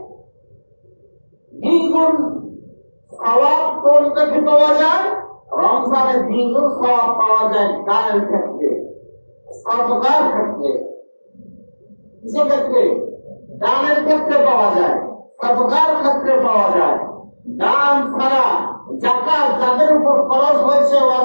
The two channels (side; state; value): both; inverted; correlation -1.00